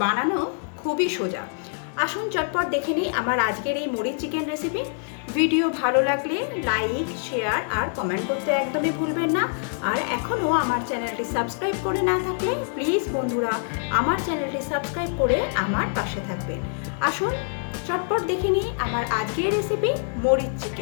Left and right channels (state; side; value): silent; right; 59 dB below the other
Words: বানানো খুবই সোজা। আসুন চটপট দেখে নিই আমার আজকের এই মুড়ির চিকেন রেসিপি। ভিডিও ভালো লাগলে লাইক, শেয়ার আর কমেন্ট করতে একদমই ভুলবেন না। আর এখনও আমার চ্যানেলটি সাবস্ক্রাইব করে না থাকলে প্লিজ বন্ধুরা আমার চ্যানেলটি সাবস্ক্রাইব করে আমার পাশে থাকবেন। আসুন চটপট দেখে নিই আমার আজকের রেসিপি মুড়ির